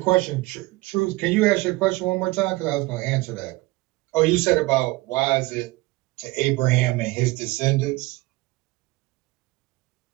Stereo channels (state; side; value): quieter; left; 21.1 dB